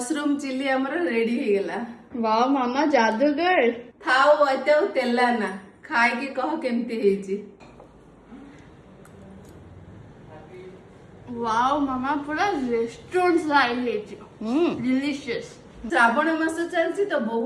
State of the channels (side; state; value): both; identical; correlation 1.00